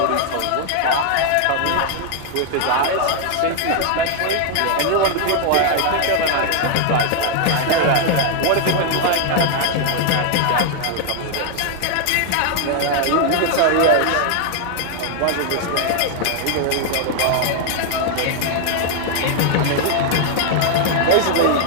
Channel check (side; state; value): both; different; correlation 0.00